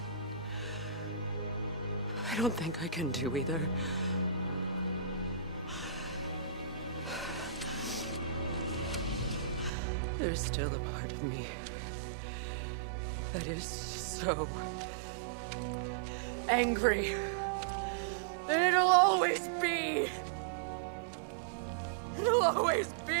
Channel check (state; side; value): drops out; left; at 9.7 s